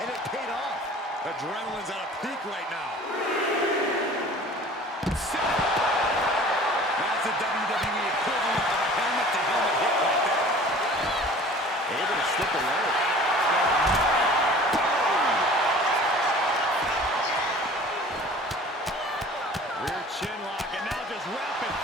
and it paid off. Adrenaline's at a peak right now. That's the WWE equivalent of a helmet-to-helmet hit right there. Able to slip away. Rear chin lock, and now just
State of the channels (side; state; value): both; normal; correlation 0.45